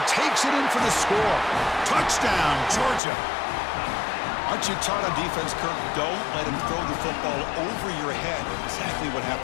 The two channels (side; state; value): right; drops out; at 3.0 s